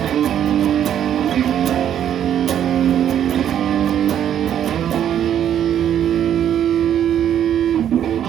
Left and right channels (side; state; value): left; quieter; 10.0 dB